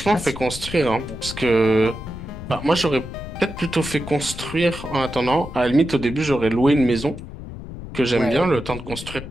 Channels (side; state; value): left; noise; rumble, 11 dB below the sound